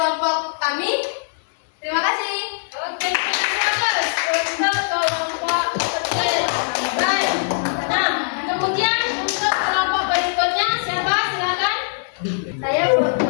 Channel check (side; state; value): right; silent; digital silence